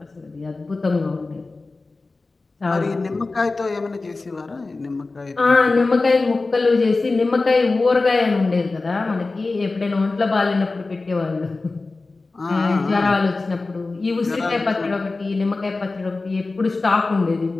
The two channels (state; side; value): quieter; right; 3.5 dB